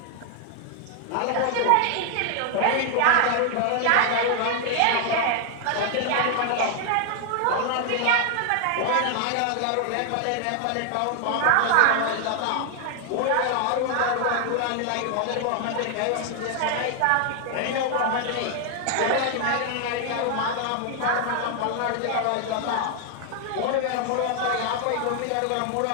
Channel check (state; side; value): different; both; correlation 0.00